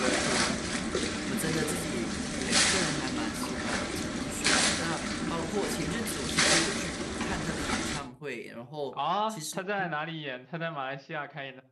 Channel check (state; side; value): identical; both; correlation 1.00